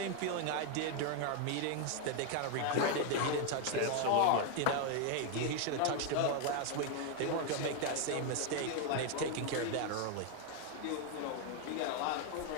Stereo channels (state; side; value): different; both; correlation 0.00